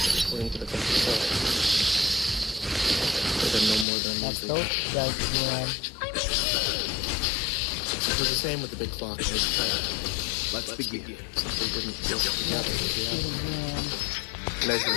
according to the clock itself. It had no more than a measly. It was the same with the big clock in his head. Let's begin. Simply didn't feel together with the other.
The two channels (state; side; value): drops out; right; at 3.9 s